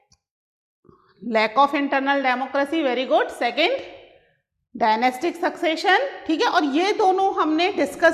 Lack of internal democracy, very good. Second, dynastic succession, ठीक है। और ये दोनों हमने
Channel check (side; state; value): both; identical; correlation 1.00